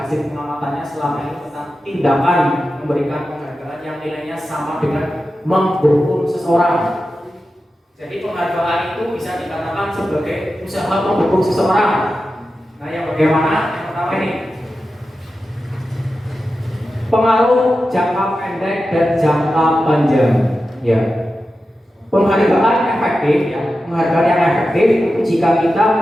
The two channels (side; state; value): both; normal; correlation 0.92